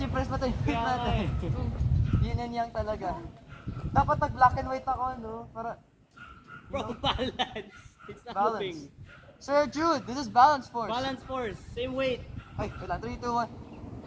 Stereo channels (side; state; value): both; identical; correlation 1.00